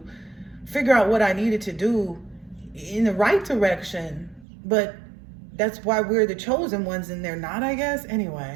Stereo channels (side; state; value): left; drops out; at 4.5 s